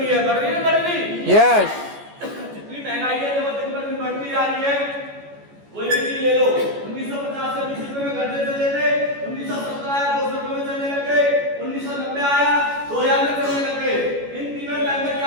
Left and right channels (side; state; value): left; late; 14 ms